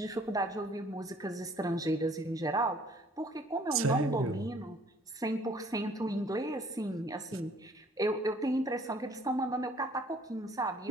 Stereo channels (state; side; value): normal; both; correlation 0.57